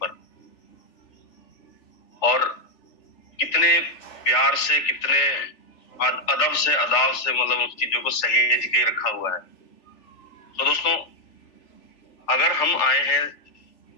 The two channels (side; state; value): right; late; 3.4 ms